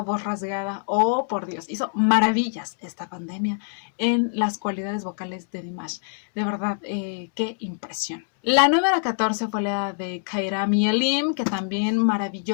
voz rasgada. Oh, por Dios, hizo maravillas esta pandemia en las cualidades vocales de Dimash. De verdad, qué impresión. La número 14 fue la de Kairam y Elim, que también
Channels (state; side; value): silent; right; 62 dB below the other